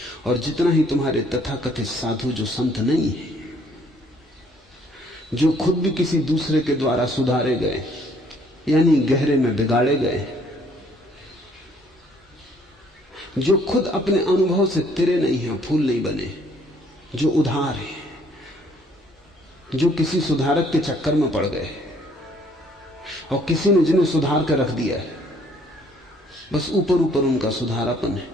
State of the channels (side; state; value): both; normal; correlation 0.63